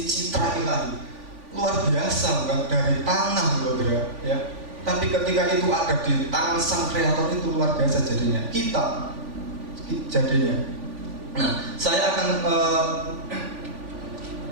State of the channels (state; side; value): late; left; 3.5 ms